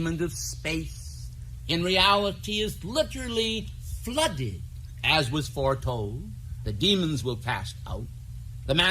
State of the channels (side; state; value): both; identical; correlation 1.00